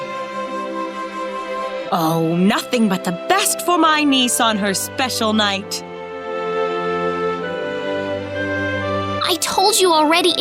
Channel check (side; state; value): both; identical; correlation 1.00